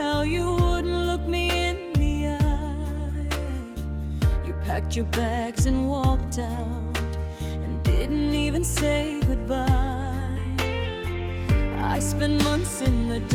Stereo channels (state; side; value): identical; both; correlation 1.00